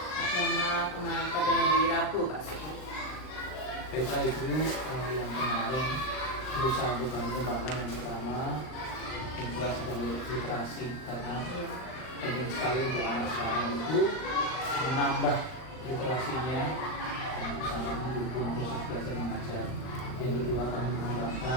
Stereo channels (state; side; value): late; right; 39 ms